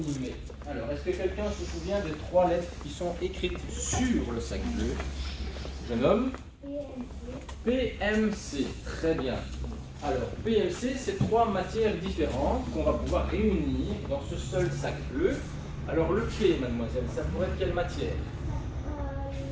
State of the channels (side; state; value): both; identical; correlation 1.00